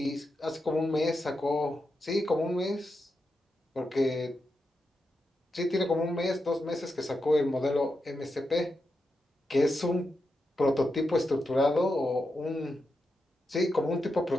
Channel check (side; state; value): both; normal; correlation 0.87